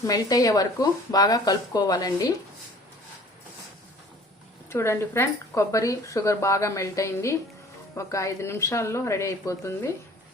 మెల్ట్ అయ్యే వరకు బాగా కలుపుకోవాలండి. చూడండి ఫ్రెండ్, కొబ్బరి షుగర్ బాగా మెల్ట్ అయింది. ఒక 5 నిమిషాల్లో రెడీ అయిపోతుంది.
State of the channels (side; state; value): both; normal; correlation 0.49